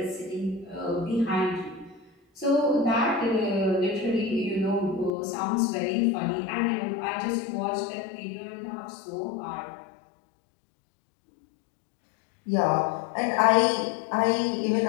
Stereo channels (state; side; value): drops out; right; at 5.1 s